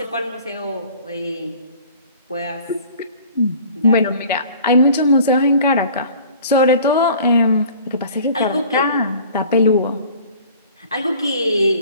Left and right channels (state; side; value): inverted; both; correlation -0.47